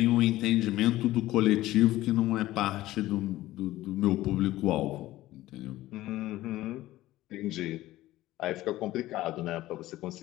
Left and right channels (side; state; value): right; quieter; 16.0 dB